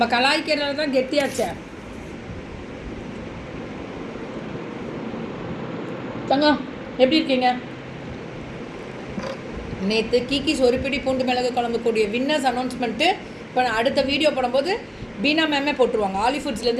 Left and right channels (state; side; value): identical; both; correlation 1.00